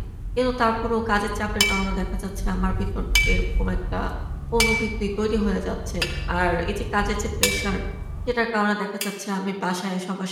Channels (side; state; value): both; identical; correlation 1.00